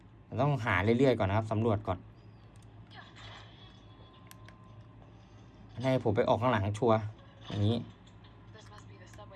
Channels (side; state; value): both; identical; correlation 1.00